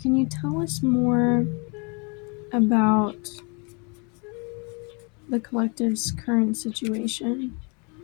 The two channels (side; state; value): right; quieter; 32.9 dB